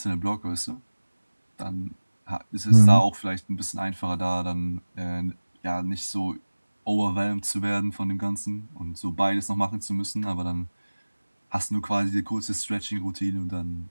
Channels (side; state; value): both; inverted; correlation -1.00